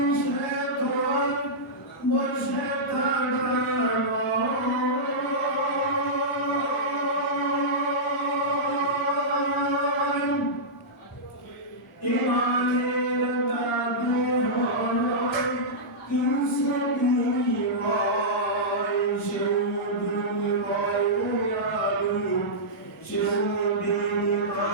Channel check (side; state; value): both; normal; correlation -0.12